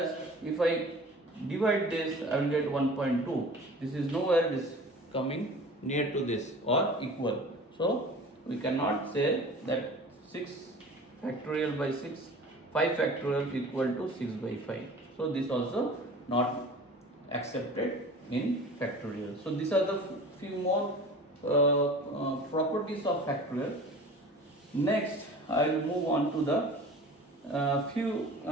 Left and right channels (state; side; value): normal; both; correlation 0.41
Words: if I divide this, I will get 1.2. This is nowhere it is coming near to this or equal. So we cannot say that 6 factorial by 6, 5 factorial equal to 6 by 5. So this also not accepted in factorial. So these are the few more properties of factorial. Next, I will move on to the